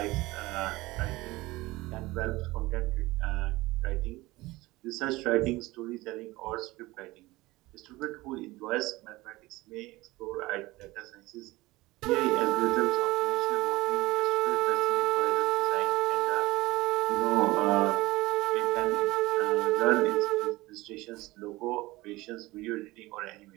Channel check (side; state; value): left; quieter; 20.1 dB